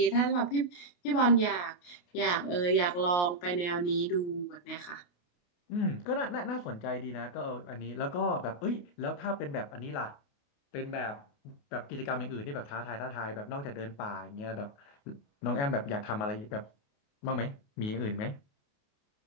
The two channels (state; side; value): late; right; 28 ms